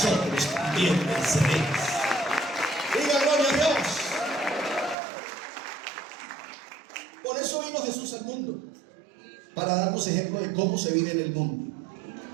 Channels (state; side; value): drops out; left; at 5.0 s